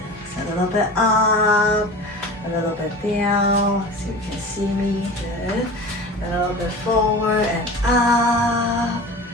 So a little bit up, a little bit down. So you can see me. Good. A little bit forward and up.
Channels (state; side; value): normal; both; correlation 0.35